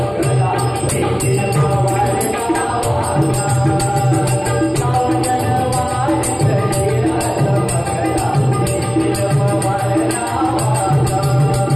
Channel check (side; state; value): both; identical; correlation 1.00